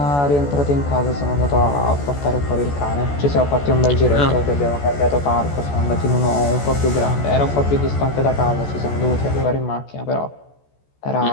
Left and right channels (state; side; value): late; right; 14 ms